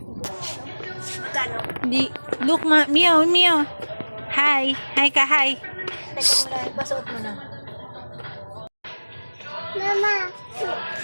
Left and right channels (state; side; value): inverted; both; correlation -1.00